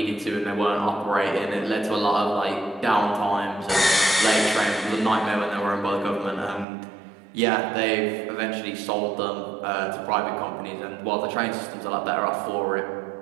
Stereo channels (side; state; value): left; drops out; at 6.7 s